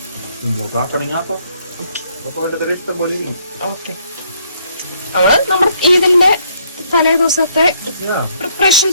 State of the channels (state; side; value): inverted; both; correlation -0.67